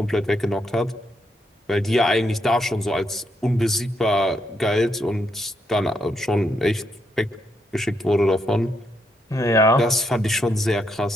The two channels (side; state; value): both; normal; correlation 0.78